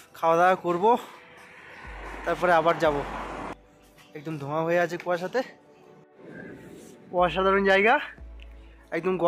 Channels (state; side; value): identical; both; correlation 1.00